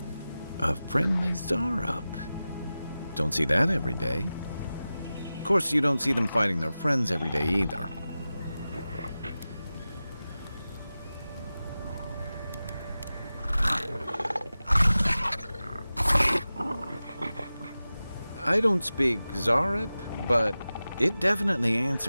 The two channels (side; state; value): both; inverted; correlation -0.95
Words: A friendly Zarep. Don't see that every day. Of course, you don't see them fighting their friends every day either. I don't speak Zarep, but it definitely